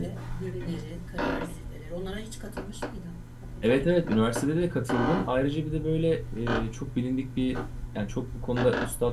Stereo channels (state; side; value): identical; both; correlation 1.00